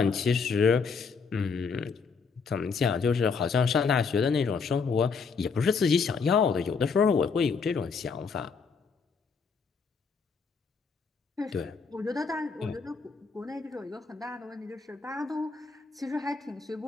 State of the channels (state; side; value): quieter; right; 5.3 dB